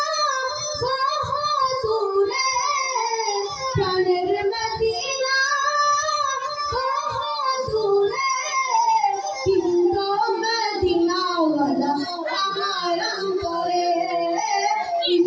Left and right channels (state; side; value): identical; both; correlation 1.00